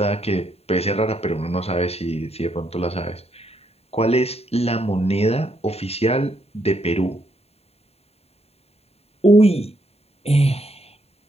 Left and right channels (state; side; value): late; right; 0.30 ms